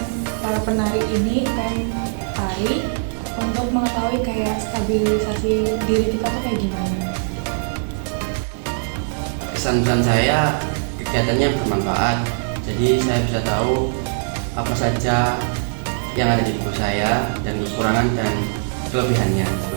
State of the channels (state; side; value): silent; left; 65 dB below the other